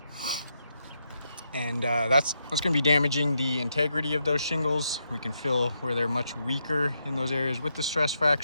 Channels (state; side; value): inverted; both; correlation -0.81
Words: and that's going to be damaging the integrity of those shingles. We can feel where they're much weaker in those areas with the stress